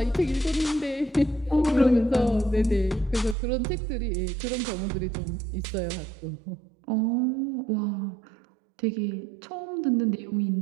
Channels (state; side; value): drops out; left; at 3.4 s